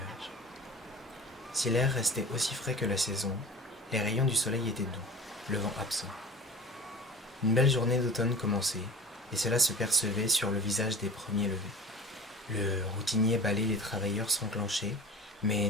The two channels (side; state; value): both; normal; correlation 0.36